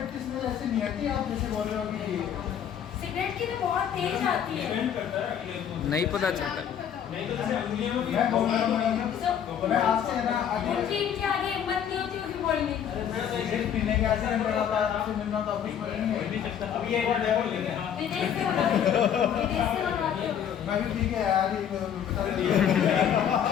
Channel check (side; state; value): right; quieter; 8.9 dB